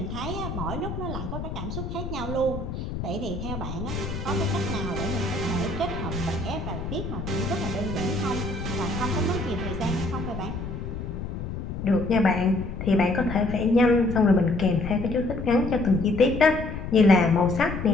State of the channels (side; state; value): left; noise; rumble, 6 dB below the sound